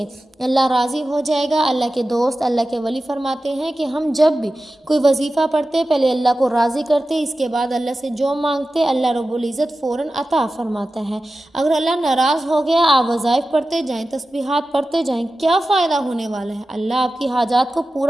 اللہ راضی ہو جائے گا۔ اللہ کے دوست، اللہ کے ولی فرماتے ہیں کہ ہم جب بھی کوئی وظیفہ پڑھتے پہلے اللہ کو راضی کرتے، اس کے بعد اللہ سے جو مانگتے اللہ رب العزت فوراً عطا فرماتا ہے۔ اگر اللہ ناراض ہو گیا، آپ وظائف پڑھتے جائیں، تسبیحات پڑھتے جائیں، کیا فائدہ ہونے والا ہے؟ اللہ آپ کی حاجات کو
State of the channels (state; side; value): normal; both; correlation 0.94